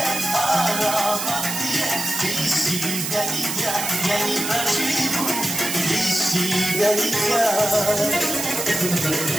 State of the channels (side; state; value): right; noise; hiss, 3 dB below the sound